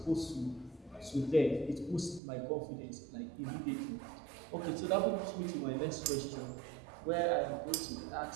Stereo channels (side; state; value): left; drops out; at 2.2 s